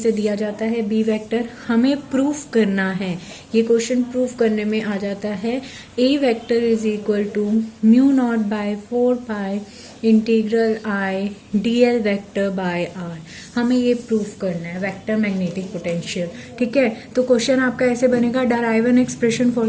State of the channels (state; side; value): identical; both; correlation 1.00